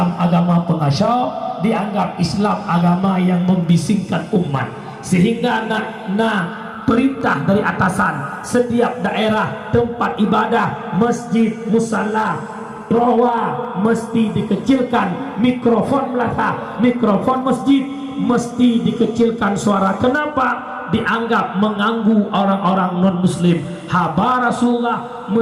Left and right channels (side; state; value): both; identical; correlation 1.00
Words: agama pengacau, dianggap Islam agama yang membisingkan umat, sehingga perintah dari atasan setiap daerah tempat ibadah, masjid, musalla, rawa mesti dikecilkan, mikrofon melata, mikrofon masjid mesti dikecilkan suara. Kenapa? Dianggap mengganggu orang-orang non-muslim. Haba Rasulullah